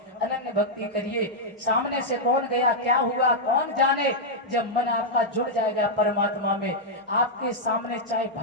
अनन्य भक्ति करिए। सामने से कौन गया, क्या हुआ, कौन जाने। जब मन आपका जुड़ जाएगा परमात्मा में, आपके सामने चाहे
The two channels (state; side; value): normal; both; correlation -0.05